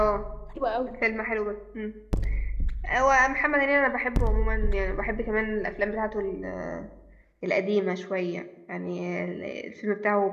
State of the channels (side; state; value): both; identical; correlation 1.00